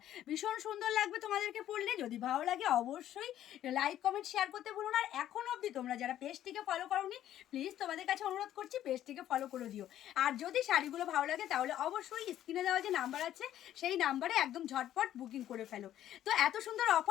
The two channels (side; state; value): right; quieter; 12.0 dB